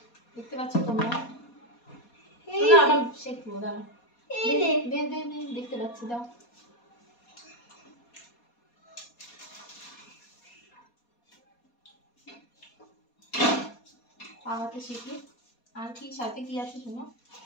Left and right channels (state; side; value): late; right; 4.2 ms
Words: দেখতে পাচ্ছ তোমরা, ওটা শেখবো। দাঁড়া দেখতে পাচ্ছি, দাও। আমাকে শিখি। আর কি সাথে কি আছে শোনো,